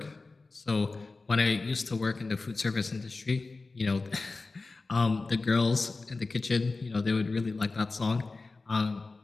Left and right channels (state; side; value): quieter; right; 3.7 dB